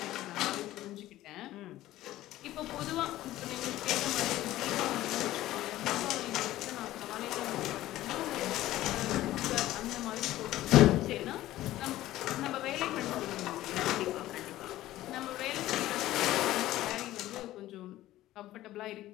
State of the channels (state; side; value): quieter; right; 15.2 dB